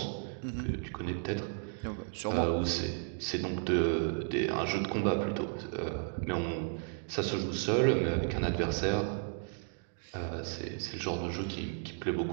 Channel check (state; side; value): silent; left; 55 dB below the other